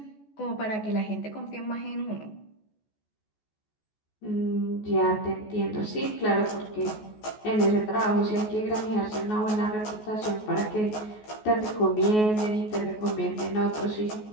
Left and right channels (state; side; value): late; right; 14 ms